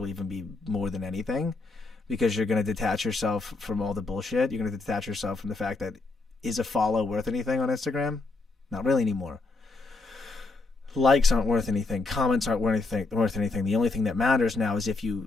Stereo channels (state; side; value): quieter; right; 3.5 dB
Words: even be more than anything, because you're going to detach yourself from all the bullshit. You're going to detach yourself from the fact that, is a follow worth anything on Instagram? Not really anymore. Likes aren't worth anything. Comments aren't worth anything. The only thing that matters now is if